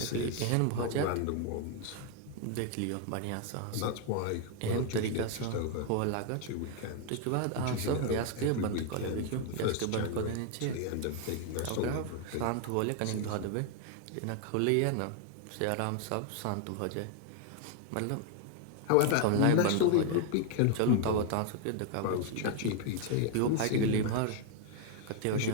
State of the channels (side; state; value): both; different; correlation 0.01